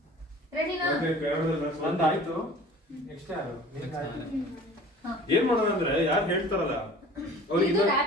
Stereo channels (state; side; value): normal; both; correlation 0.45